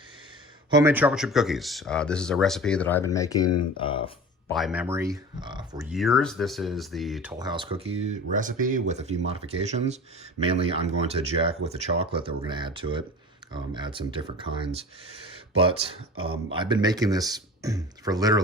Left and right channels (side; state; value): both; normal; correlation 0.37